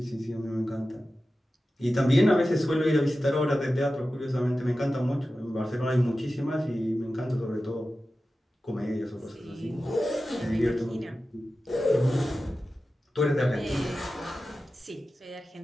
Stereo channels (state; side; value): normal; both; correlation 0.94